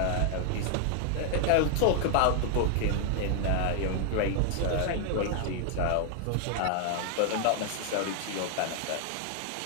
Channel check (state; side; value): different; both; correlation 0.00